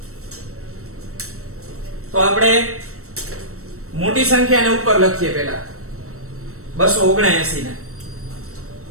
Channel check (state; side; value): late; left; 0.63 ms